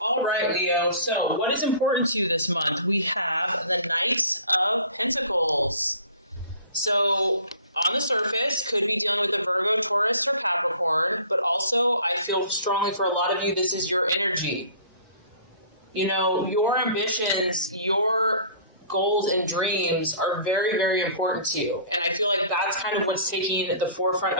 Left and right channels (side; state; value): both; inverted; correlation -0.48